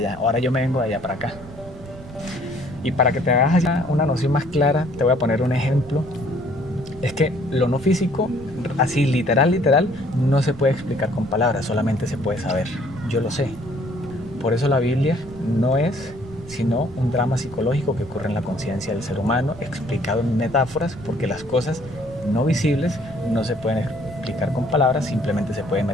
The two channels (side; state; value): right; noise; rumble, 17 dB below the sound